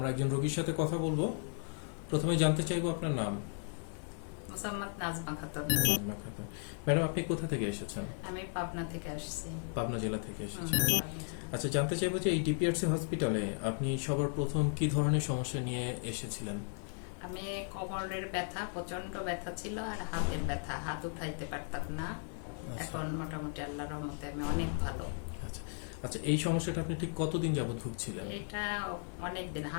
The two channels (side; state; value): right; silent; 54 dB below the other